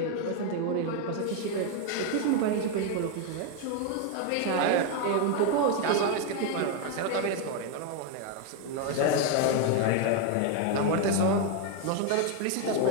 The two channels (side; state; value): both; different; correlation 0.01